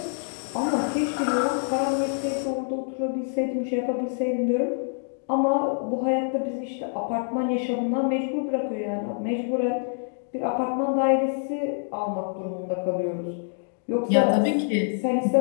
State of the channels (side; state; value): right; silent; 61 dB below the other